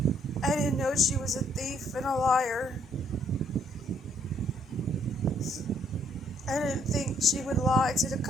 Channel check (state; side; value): normal; both; correlation 0.67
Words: I didn't know she was a thief and a liar. I didn't think she would lie to the